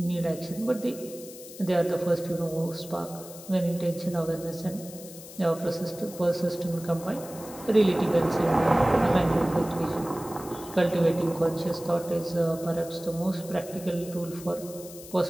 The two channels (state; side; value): noise; left; hiss, 16 dB below the sound